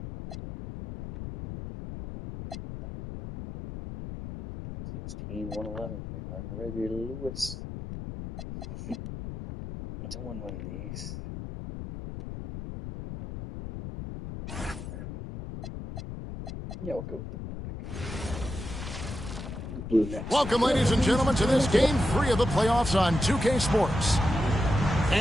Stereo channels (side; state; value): left; noise; rumble, 9 dB below the sound